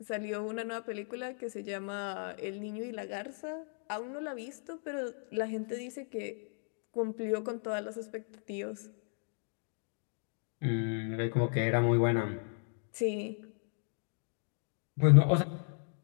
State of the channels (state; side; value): silent; right; 54 dB below the other